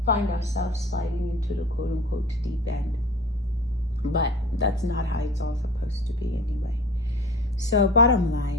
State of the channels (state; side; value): normal; both; correlation 0.41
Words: find ourselves sliding into the quote-unquote deep end. But that's not how it's all supposed to be anyway. So bottom